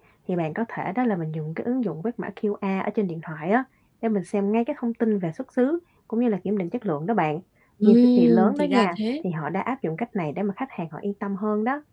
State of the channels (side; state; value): both; identical; correlation 1.00